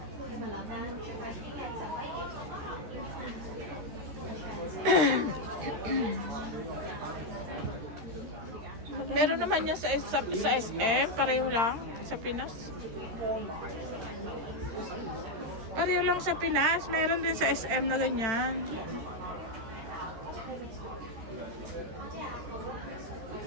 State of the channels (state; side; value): late; left; 13 ms